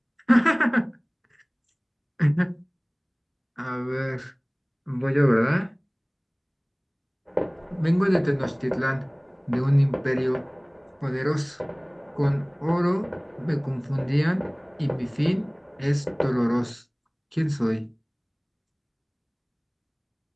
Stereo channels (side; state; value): both; identical; correlation 1.00